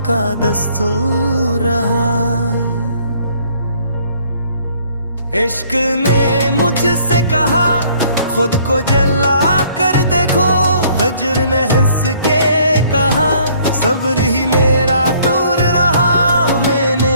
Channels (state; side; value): inverted; both; correlation -0.61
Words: का दस्तूर रहा। इश्क ने मुझसे कहा खुद को जला कर देखो, हजर ने हंस के कहा सब्र ही मेरा टूर रहा। मैंने